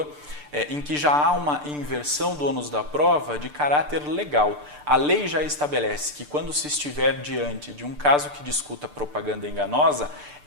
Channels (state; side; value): late; left; 6.8 ms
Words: em que já há uma inversão do ônus da prova de caráter legal. A lei já estabelece que quando se estiver diante de um caso que discuta propaganda enganosa,